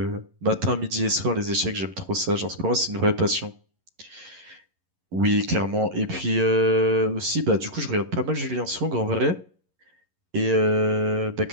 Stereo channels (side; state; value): left; late; 11 ms